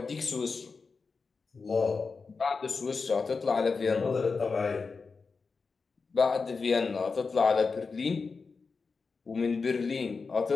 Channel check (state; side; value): quieter; right; 4.7 dB